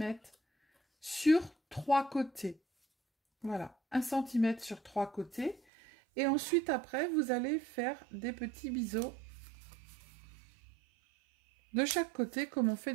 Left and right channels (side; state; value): left; drops out; at 5.6 s